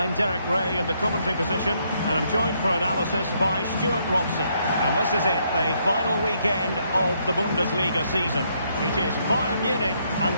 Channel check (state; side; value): inverted; both; correlation -0.73